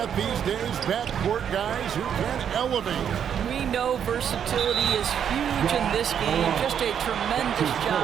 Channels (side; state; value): left; quieter; 8.5 dB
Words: these days. Backcourt guys who can elevate. We know versatility is huge in this game. Just a tremendous